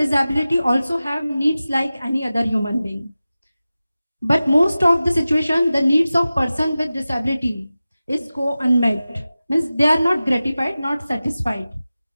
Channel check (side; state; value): both; inverted; correlation -0.96